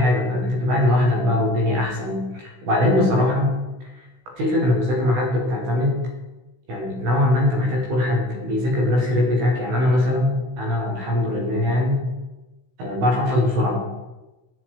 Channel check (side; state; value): left; late; 16 ms